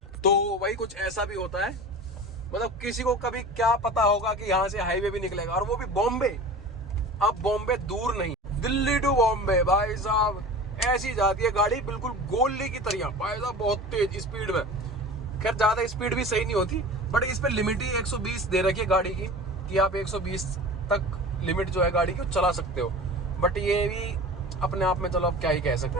तो वही कुछ ऐसा भी होता है, मतलब किसी को कभी क्या पता होगा कि यहाँ से हाईवे भी निकलेगा, और वो भी बॉम्बे। अब बॉम्बे दूर नहीं, दिल्ली टू बॉम्बे भाई साहब ऐसी जाती है गाड़ी, बिल्कुल गोली की तरह भाई साहब, बहुत तेज स्पीड में। खैर ज्यादा स्पीड भी सही नहीं होती, बट इस पे लिमिट ही 120 दे रखी है गाड़ी की, कि आप 120 तक लिमिट जो है गाड़ी की चला सकते हो। बट ये भी अपने आप में चलो अब क्या ही कह सकते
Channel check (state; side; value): normal; both; correlation 0.36